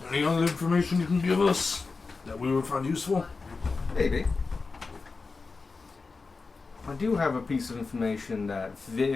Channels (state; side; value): quieter; right; 4.2 dB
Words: Any other information you can give us that we would find useful? Maybe. I do have a piece of information that